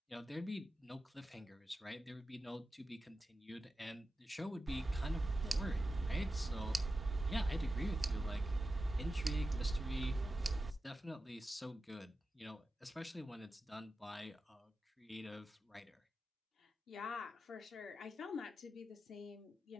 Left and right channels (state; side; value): normal; both; correlation 0.92